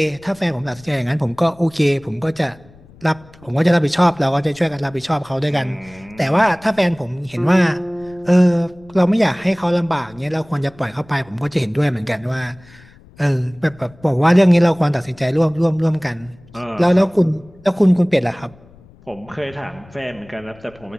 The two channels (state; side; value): noise; left; rumble, 25 dB below the sound